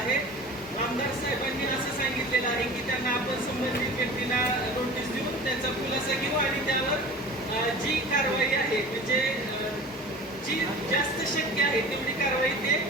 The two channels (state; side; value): normal; both; correlation 0.38